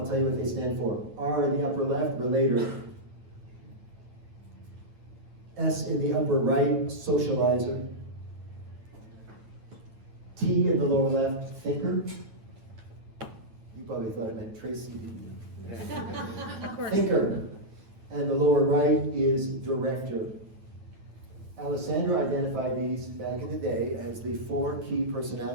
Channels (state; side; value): late; left; 9.1 ms